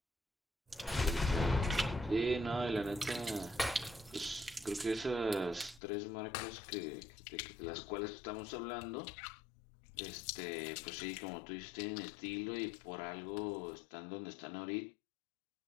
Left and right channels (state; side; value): drops out; right; at 5.8 s